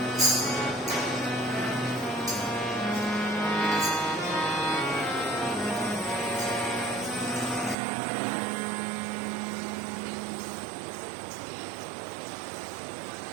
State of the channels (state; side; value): drops out; left; at 7.8 s